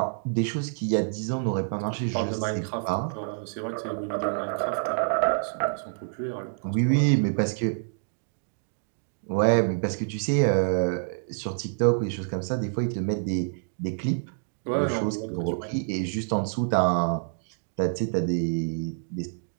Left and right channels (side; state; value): left; silent; digital silence